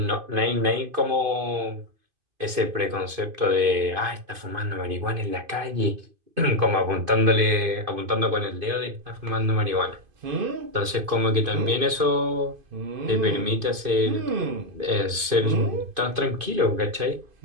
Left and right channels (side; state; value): left; late; 2.5 ms